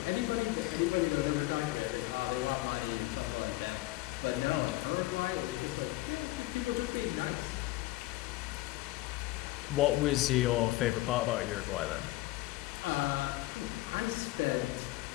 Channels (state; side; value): quieter; right; 18.2 dB